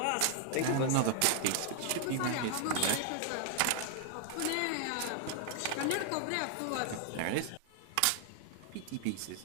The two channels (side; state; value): both; different; correlation 0.00